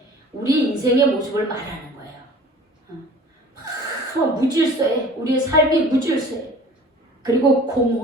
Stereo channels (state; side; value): normal; both; correlation 0.46